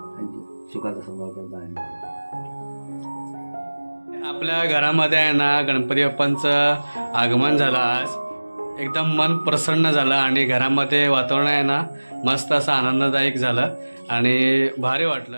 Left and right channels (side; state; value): both; inverted; correlation -1.00